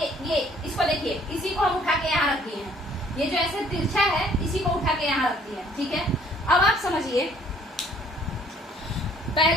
ये इसको देखिए, इसी को हम उठा के यहाँ रख दिए हैं। ये जो ऐसे तिरछा है, इसी को उठा के यहाँ रख दिए हैं, ठीक है। अब आप समझिए,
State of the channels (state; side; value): normal; both; correlation 0.60